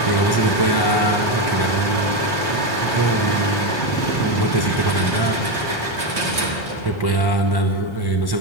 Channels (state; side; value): late; right; 1.3 ms